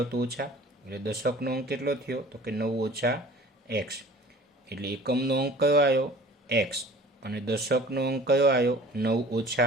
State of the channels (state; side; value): normal; both; correlation 0.46